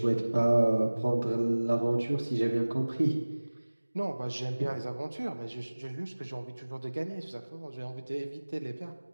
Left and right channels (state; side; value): inverted; both; correlation -1.00